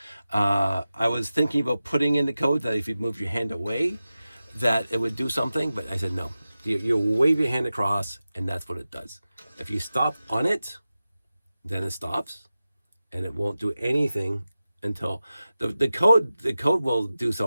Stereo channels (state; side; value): inverted; both; correlation -0.94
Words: I was thinking about putting in the code that if you move your hand away, that it would do something, but I said no. You wave your hand across, and that's what it does. If you stop on it, then it stops, and it won't do anything until the code will do